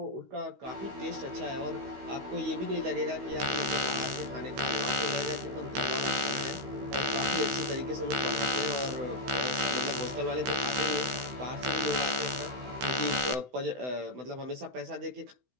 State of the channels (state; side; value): late; left; 16 ms